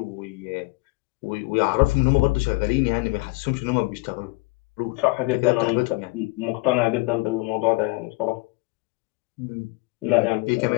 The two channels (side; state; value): right; quieter; 24.1 dB